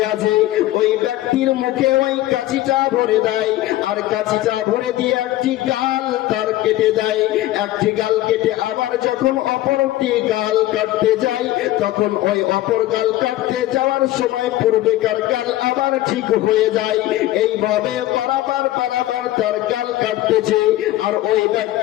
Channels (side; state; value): right; quieter; 15.4 dB